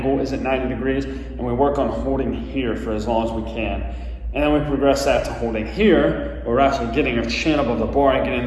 is at 90 degrees, and we work on holding here for as long as we can. And then we progress that to holding here, where we're actually getting our chin above the bar and getting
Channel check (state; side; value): identical; both; correlation 1.00